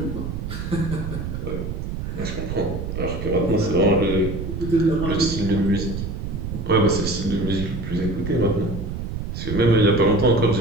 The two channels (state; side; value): noise; right; rumble, 5 dB below the sound